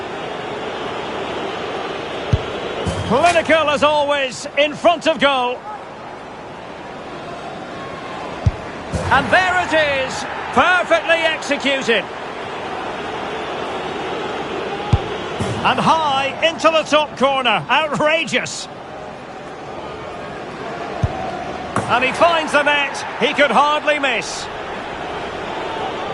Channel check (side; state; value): both; identical; correlation 1.00